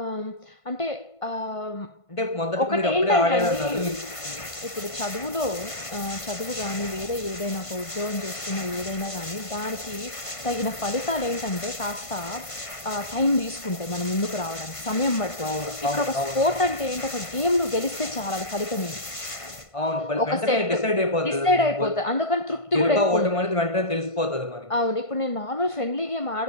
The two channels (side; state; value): right; late; 1.5 ms